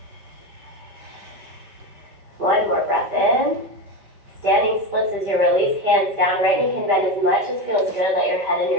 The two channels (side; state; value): left; late; 5.1 ms